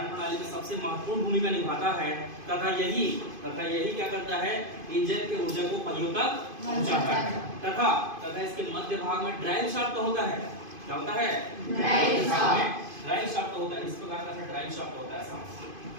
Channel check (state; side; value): late; left; 2.5 ms